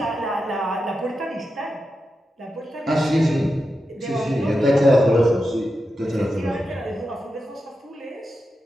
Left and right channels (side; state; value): both; normal; correlation 0.89